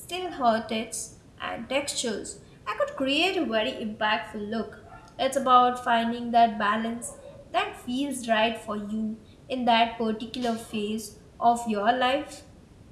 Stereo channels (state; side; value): identical; both; correlation 1.00